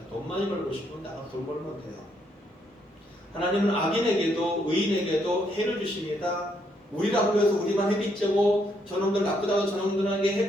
돈 많이 벌고 싶으면 나가 돈 벌면 돼요. 하나님은 악인에게도 의인에게도 해를 주십니다. 우리라고 해서 우리만 햇빛 쬐고 저놈들 나쁘다고 저놈들에게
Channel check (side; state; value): both; normal; correlation 0.74